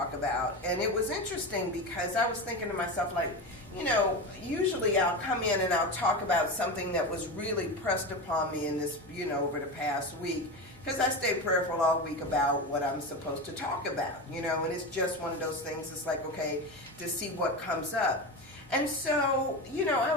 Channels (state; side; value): normal; both; correlation 0.22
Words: about. And it was interesting because I was thinking to myself, like, you know, usually I'll come in and I'll talk about something that was really pressed upon me in this, you know, over the past week. Because I stay prayerful all week about what I'm supposed to talk about, you know, and it's just one of those things. It's like, okay, to see what comes up. And so, you know, I